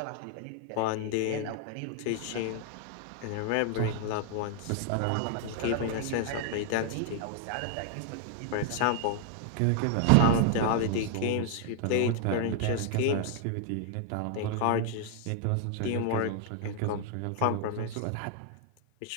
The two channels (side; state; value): both; different; correlation 0.00